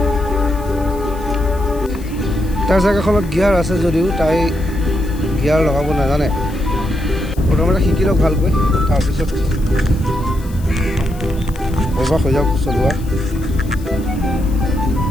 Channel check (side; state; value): left; noise; hiss, 22 dB below the sound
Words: তাৰ চাইকেলখনত গিয়াৰ আছে যদিও তাই গিয়াৰ লগাব নাজানে। প্ৰথমতে শিকি লওক ভালকৈ, তাৰপিছত অভ্যাস হৈ যাওক চলোৱা।